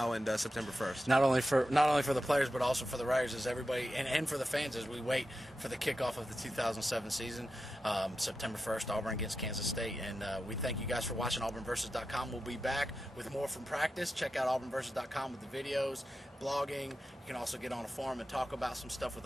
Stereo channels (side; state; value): both; normal; correlation 0.90